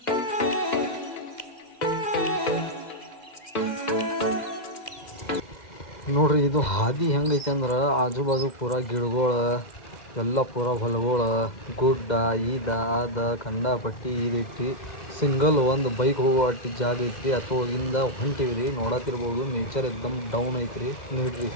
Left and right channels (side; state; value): right; late; 2.0 ms